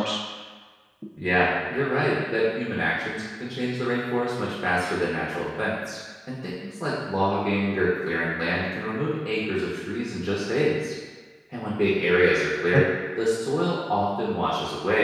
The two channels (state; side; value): identical; both; correlation 1.00